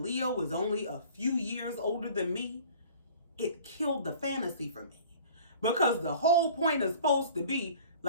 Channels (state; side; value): inverted; both; correlation -0.47